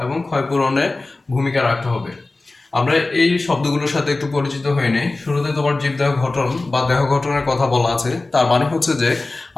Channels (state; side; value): quieter; right; 3.2 dB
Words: এবং ক্ষয়পূরণে ভূমিকা রাখতে হবে। আমরা এই শব্দগুলোর সাথে একটু পরিচিত হয়ে নেই। শুরুতে তোমার জীবদেহ গঠন বা দেহ গঠনের কথা বলা আছে, তার মানে হচ্ছে যে